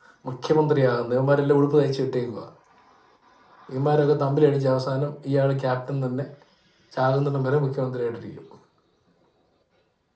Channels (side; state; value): both; identical; correlation 1.00